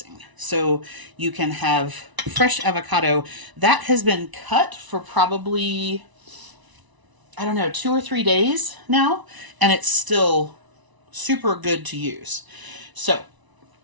So you can have fresh avocado. That has been cut for probably, I don't know, 2 or 3 days now, and it's still super good to use. So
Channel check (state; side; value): late; left; 1.0 ms